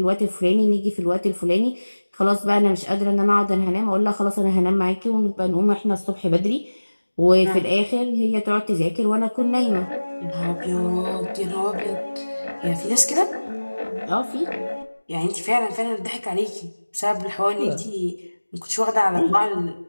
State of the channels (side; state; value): both; inverted; correlation -1.00